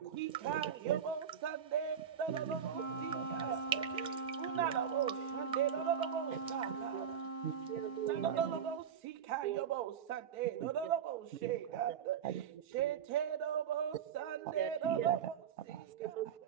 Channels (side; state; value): left; quieter; 8.0 dB